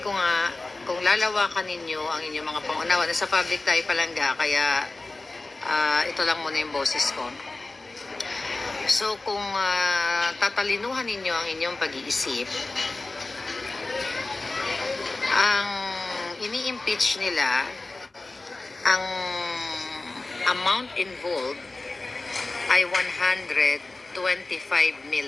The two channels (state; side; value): quieter; right; 3.2 dB